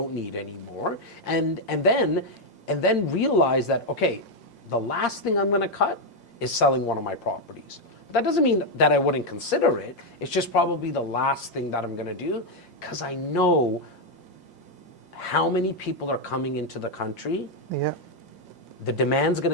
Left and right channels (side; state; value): right; late; 5.7 ms